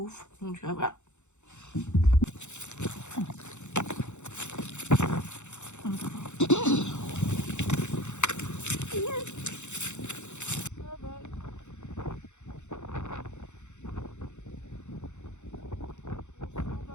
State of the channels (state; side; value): late; right; 0.83 ms